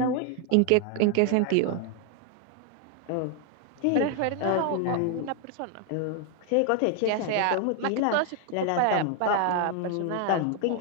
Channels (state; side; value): different; both; correlation 0.00